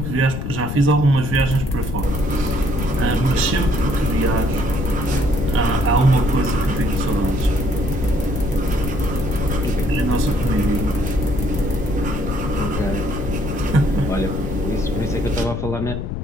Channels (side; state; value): left; noise; rumble, 5 dB below the sound